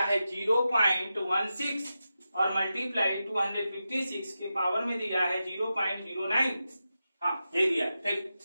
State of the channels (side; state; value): both; inverted; correlation -0.91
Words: है 0.16 और मल्टीप्लाई 256 के पावर में दिया है 0.09, हाँ ये दिया, ठीक।